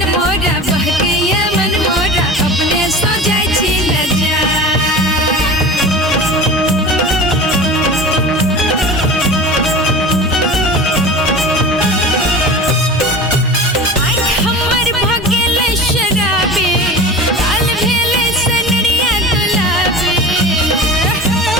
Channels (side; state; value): both; normal; correlation 0.33